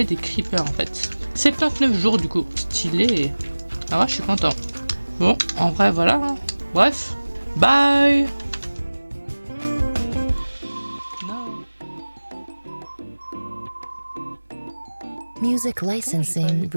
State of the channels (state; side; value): inverted; both; correlation -1.00